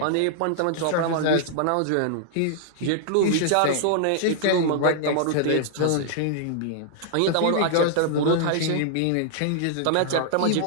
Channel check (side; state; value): both; different; correlation -0.01